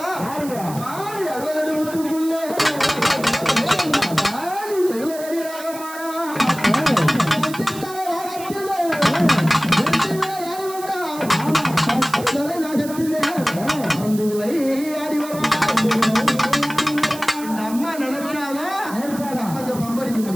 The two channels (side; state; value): right; noise; hiss, 14 dB below the sound